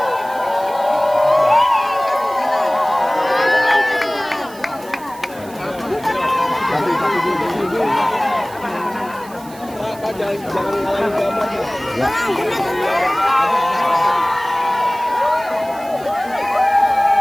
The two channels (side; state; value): right; noise; hiss, 21 dB below the sound